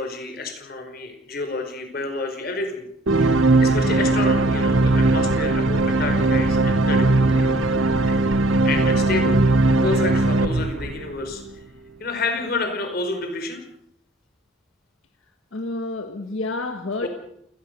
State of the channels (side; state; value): both; normal; correlation 0.56